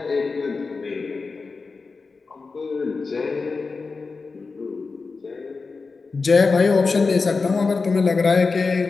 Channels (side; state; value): right; quieter; 4.3 dB